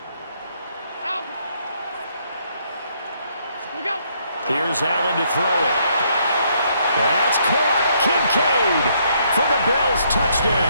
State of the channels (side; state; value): both; inverted; correlation -0.71